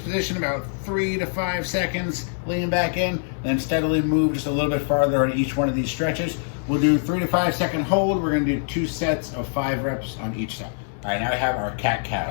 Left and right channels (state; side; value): silent; right; 63 dB below the other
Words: about 3 to 5 seconds, lean back in, then steadily move just a little bit farther on each one of these stretches. We'll do 3 to 5 second hold. We're gonna do 2 sets of 5 reps on each side. All right, now we have our